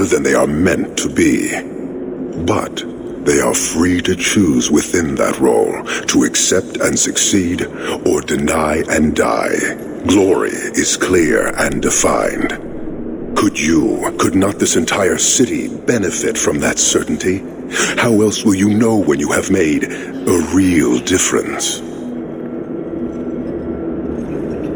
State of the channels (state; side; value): identical; both; correlation 1.00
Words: than they are meant to be. But they are free to choose within that role, to accept and succeed, or deny and die. Glory is clear and defined. Could not this entire city benefit from that certainty? How else will you know when you have made a real difference?